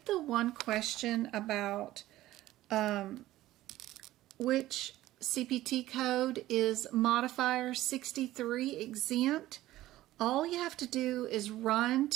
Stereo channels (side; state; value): left; quieter; 15.5 dB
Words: the one question about which CPT code is modifier 63 exempt, all you have to do is run